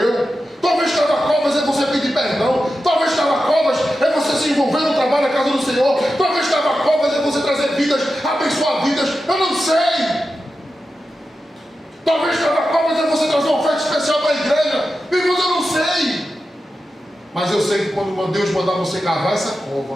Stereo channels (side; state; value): both; normal; correlation 0.91